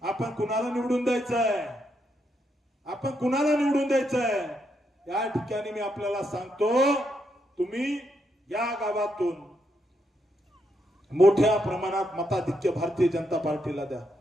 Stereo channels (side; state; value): both; normal; correlation 0.79